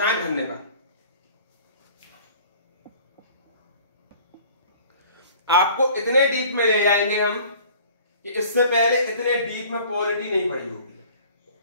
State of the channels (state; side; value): inverted; both; correlation -0.49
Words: धन्यवाद। आपको इतने डीप में ले जाएंगे हम कि इससे पहले इतने डीप में पॉलिटी नहीं पढ़ी होगी।